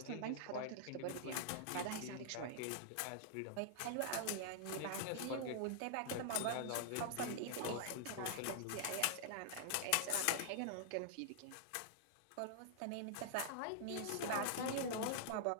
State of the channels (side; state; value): both; different; correlation -0.01